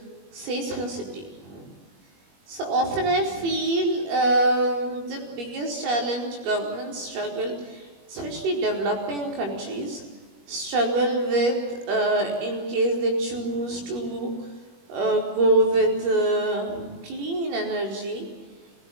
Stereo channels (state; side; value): late; left; 21 ms